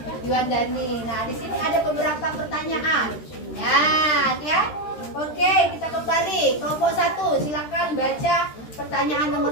Yuan Dani. Nah, di sini ada beberapa pertanyaan. Ya. Oke, kita kembali. Kelompok 1, silakan baca pertanyaan nomor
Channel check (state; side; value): late; right; 13 ms